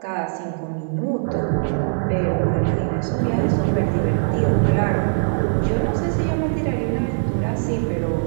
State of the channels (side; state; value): left; silent; 65 dB below the other